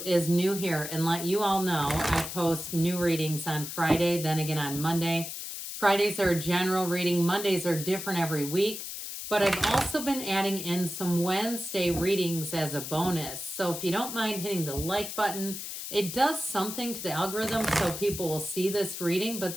is new here and let you all know I post new readings on Friday, then again on Monday. Fridays are a general reading. Mondays are different every week. But I've also been adding in some Wednesday readings as a bonus. So if you don't mind hitting the like button, it does something to the algorithm so people will see this reading, but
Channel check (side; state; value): left; noise; hiss, 7 dB below the sound